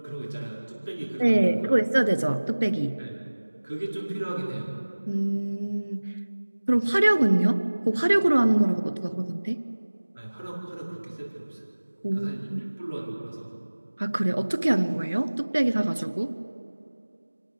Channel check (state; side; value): inverted; both; correlation -1.00